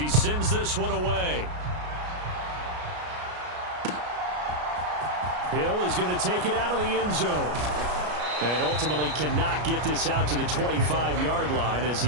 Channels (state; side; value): late; left; 33 ms